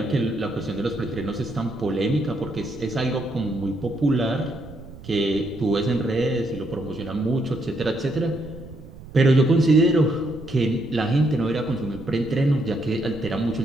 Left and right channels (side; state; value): right; noise; rumble, 17 dB below the sound